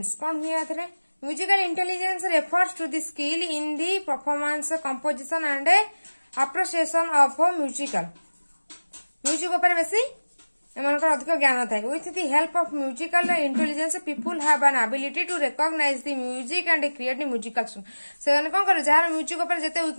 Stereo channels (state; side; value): inverted; both; correlation -1.00